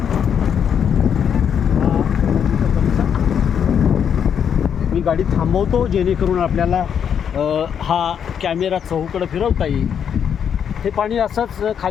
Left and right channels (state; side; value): quieter; right; 8.1 dB